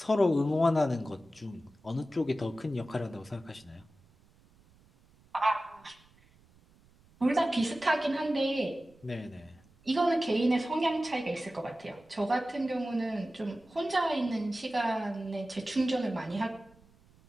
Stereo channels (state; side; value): noise; right; rumble, 29 dB below the sound